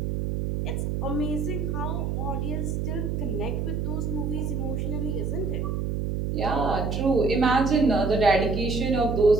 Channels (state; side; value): noise; right; hum, 1 dB below the sound